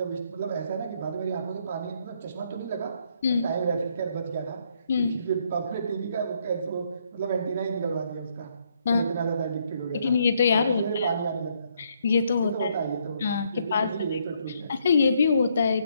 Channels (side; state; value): both; inverted; correlation -0.72